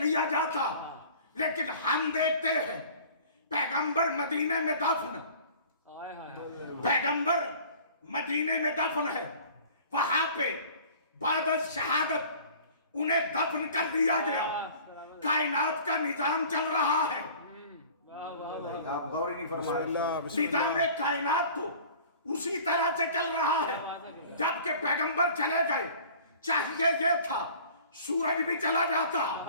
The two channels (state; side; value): inverted; both; correlation -0.46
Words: जाता। लेकिन हम देखते हैं पैगंबर मदीने में दफन, पैगंबर मदीने में दफन है, वहां पे बाद शहादत उन्हें दफन कर दिया गया। कायनात का निजाम चल रहा है, आप गौर ही नहीं फरमाए। निजाम कायनात तो उसी तरह से चल रहा है। जबकि पैगंबर चले गए, चाहिए ये था सूरज भी चला जाता,